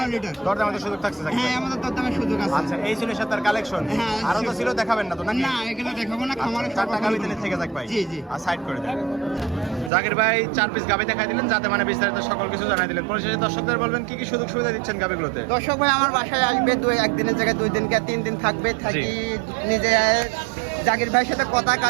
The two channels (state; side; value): drops out; left; at 9.9 s